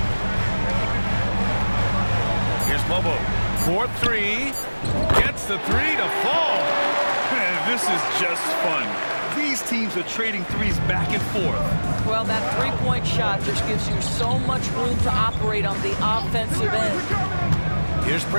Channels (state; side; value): inverted; both; correlation -1.00